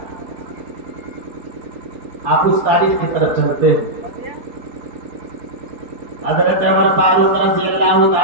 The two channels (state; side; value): late; left; 4.2 ms